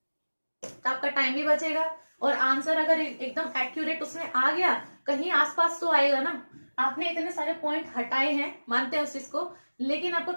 तो आपका टाइम भी बचेगा, और आंसर अगर एकदम एक्यूरेट उसमें आ गया, कहीं आसपास तो आएगा ना। आपने इतने सारे पॉइंट हटाए हैं, मानते हैं उस चीज को, लेकिन आपको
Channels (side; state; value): both; inverted; correlation -1.00